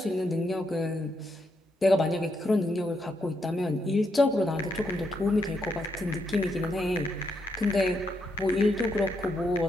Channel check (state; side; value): normal; both; correlation 0.79